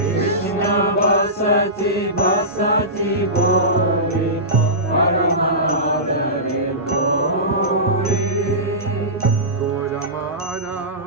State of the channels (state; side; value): normal; both; correlation -0.19